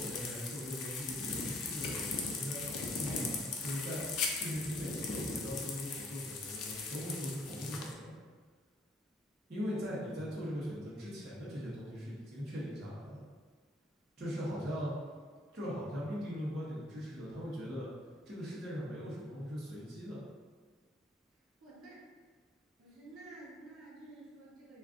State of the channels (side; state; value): both; normal; correlation 0.64